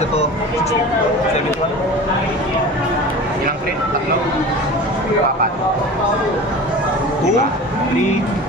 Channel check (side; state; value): both; normal; correlation 0.35